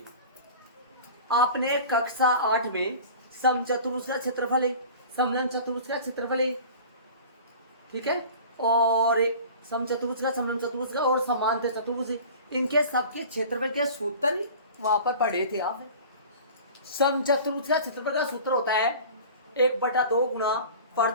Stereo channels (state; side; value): inverted; both; correlation -0.40